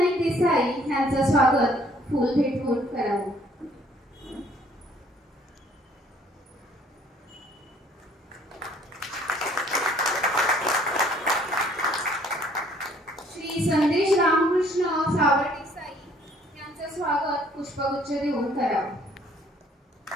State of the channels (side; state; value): both; normal; correlation 0.60